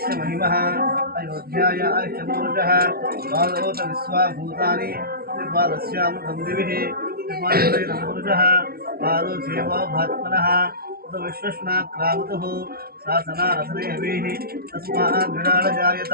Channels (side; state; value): left; late; 0.44 ms